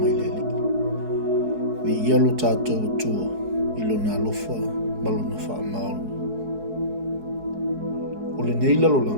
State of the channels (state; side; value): late; left; 4.7 ms